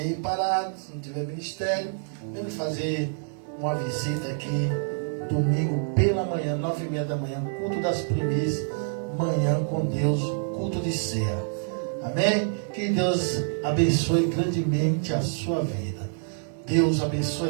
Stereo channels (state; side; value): silent; left; 60 dB below the other